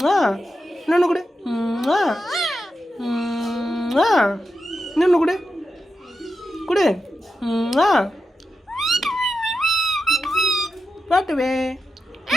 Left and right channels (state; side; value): normal; both; correlation 0.88